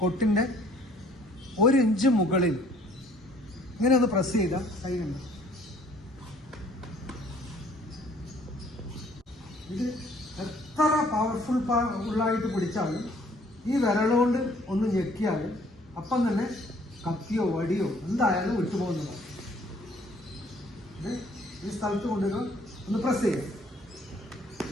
1 ഇഞ്ച് മുകളിൽ ഇങ്ങനെ ഒന്ന് പ്രസ് ചെയ്താൽ കൈയുണ്ട്. ഇത് എത്ര ഉള്ളായിട്ട് പിടിച്ചാലും ഈ വിരലുകൊണ്ട് ഒന്ന് ഞെക്കിയാലും അപ്പം തന്നെ കത്തിയോ വടിയോ എന്തായാലും വിട്ടുപോകുന്നതാണ്. ഈ സ്ഥലത്ത് കൊണ്ടുവരുമ്പോൾ ഒന്ന് പ്രസ് ചെയ്യാം.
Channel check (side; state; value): both; normal; correlation 0.59